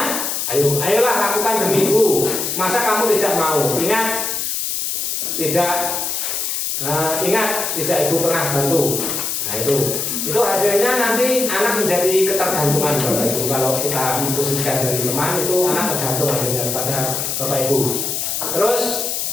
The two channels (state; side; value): noise; left; hiss, 1 dB below the sound